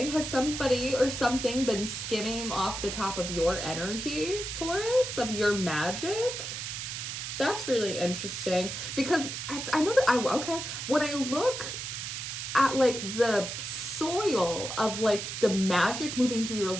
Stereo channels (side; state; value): right; noise; hiss, 6 dB below the sound